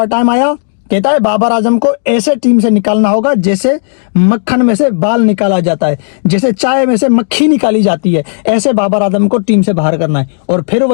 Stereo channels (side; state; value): right; silent; digital silence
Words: टाइम आया। कहता है बाबर आजम को ऐसे टीम से निकालना होगा जैसे मक्खन में से बाल निकाला जाता है, जैसे चाय में से मक्खी निकाली जाती है, ऐसे बाबर आजम को टीम से बाहर करना है। और फिर